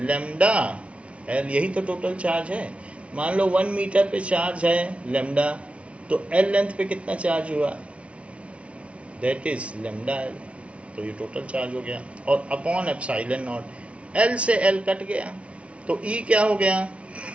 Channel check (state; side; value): late; left; 0.062 ms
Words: L, यही तो टोटल चार्ज है। मान लो 1 मीटर पे चार्ज है लैम्डा, तो L लेंथ पे कितना चार्ज हुआ, दैट इज लैम्डा L, तो ये टोटल चार्ज हो गया। और अपॉन एप्सिलॉन नॉट, L से L कट गया तो E क्या हो गया,